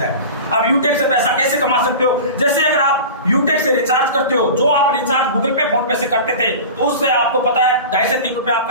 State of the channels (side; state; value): both; inverted; correlation -0.34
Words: है। अब यूटेक से पैसा कैसे कमा सकते हो, जैसे अगर आप यूटेक से रिचार्ज करते हो, जो आप रिचार्ज गूगल पे फोन पे से करते थे तो उससे आपको पता है 2.5 से 3 रुपए